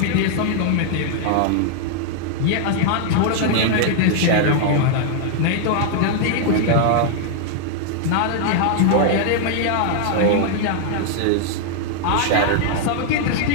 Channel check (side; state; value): both; different; correlation 0.00